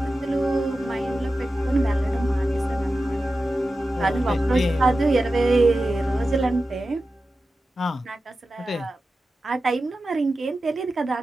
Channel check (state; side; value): normal; both; correlation 0.93